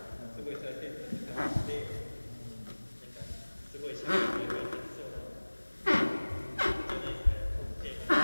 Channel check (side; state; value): both; inverted; correlation -1.00